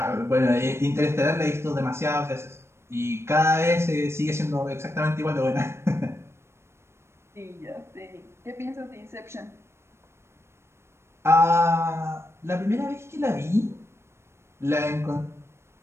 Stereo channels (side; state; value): left; late; 0.13 ms